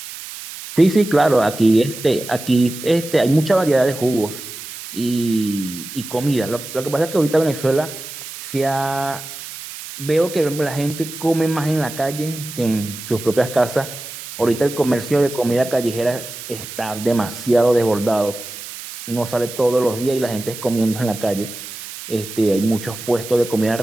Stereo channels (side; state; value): right; noise; hiss, 12 dB below the sound